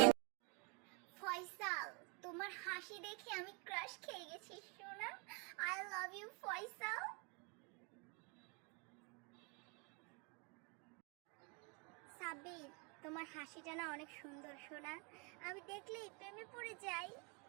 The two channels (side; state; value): left; quieter; 32.9 dB